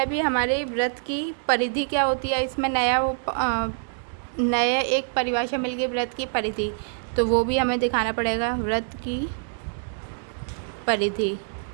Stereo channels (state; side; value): silent; left; digital silence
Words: भी हमारे वृत्त की परिधि क्या होती है, इसमें नया एक परिभाषा मिल गई वृत्त की परिधि, तो वो भी हमें दिखाना पड़ेगा। वृत्त की परिधि,